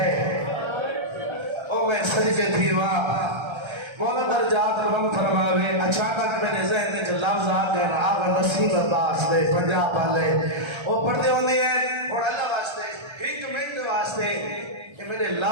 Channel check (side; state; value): left; late; 1.3 ms